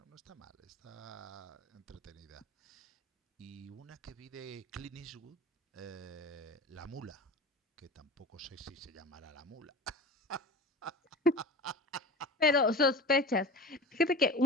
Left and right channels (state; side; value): normal; both; correlation 0.34